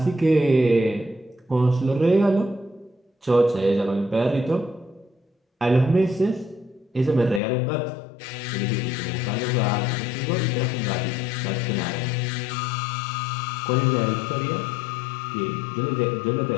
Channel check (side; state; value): right; drops out; at 7.4 s